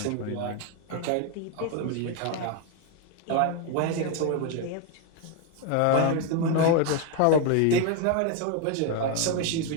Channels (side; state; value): both; different; correlation 0.01